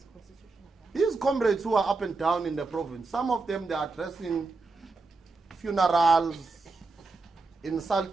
These comrades who are up and down in the province, some of them, they are addressing funerals,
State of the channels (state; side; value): quieter; left; 3.8 dB